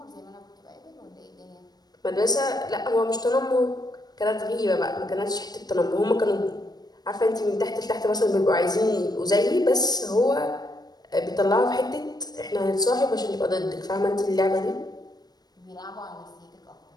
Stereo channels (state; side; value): late; right; 0.19 ms